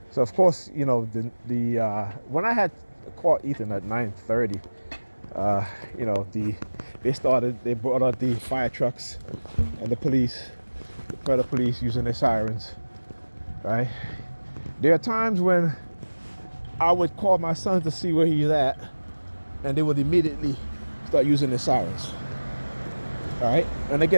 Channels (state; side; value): inverted; both; correlation -1.00